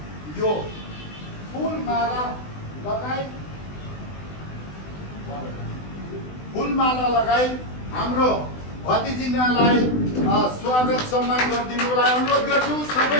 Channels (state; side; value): late; right; 20 ms